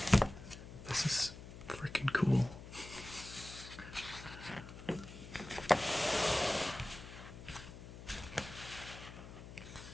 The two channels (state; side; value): noise; left; hum, 13 dB below the sound